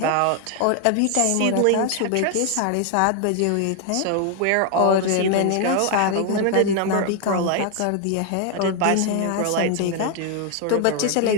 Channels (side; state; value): both; different; correlation 0.01